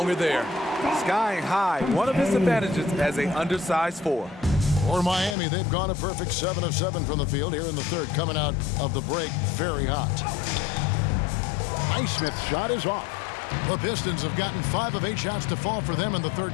there. Skying high, one of his advantages as an undersized 4. For Miami, they've gone a perfect 7 of 7 from the field here in the third, coming out of the break very hot. Highsmith's shot is off. The Pistons have gotten 5 of 8 shots to fall for them in the third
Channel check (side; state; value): right; drops out; at 5.4 s